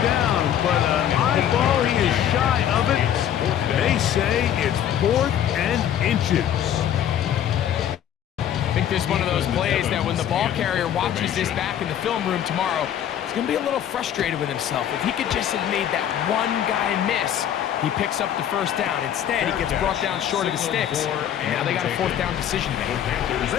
down, but an eyeball, he is shy of it. They say it's 4th and inches. I think this is one of those plays that when the ball carrier watches this back in the film room tomorrow, he's going to be a little frustrated with himself. If he could just have made that one guy miss, he picks up the 1st down. Instead, he gets brought down short of the sticks. And now they got a 4th down decision to make.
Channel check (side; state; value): right; quieter; 10.2 dB